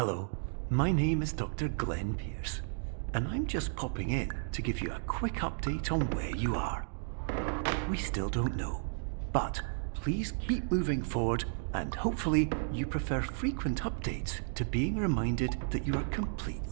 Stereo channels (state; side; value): silent; left; digital silence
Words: my name is Dr. Glenn Pierce, and I'm just popping in to give you a quick update on where you are. We still don't know, but please keep moving forward, and hopefully you prefer frequent updates to being reminded that you are